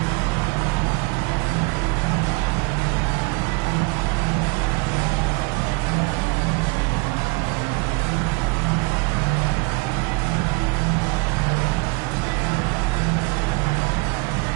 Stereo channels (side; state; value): left; quieter; 28.2 dB